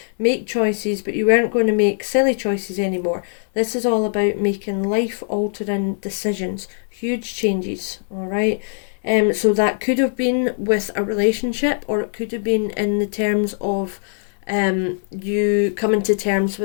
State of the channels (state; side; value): silent; right; digital silence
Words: make choices, but you weren't going to make silly choices anymore. This is all about making life-altering decisions, huge changes, all right? So that could have been with a relationship, or it could have been in the terms of you coming to terms